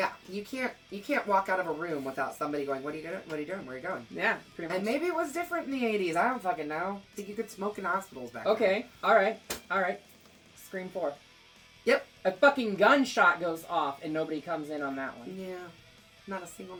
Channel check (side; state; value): both; identical; correlation 1.00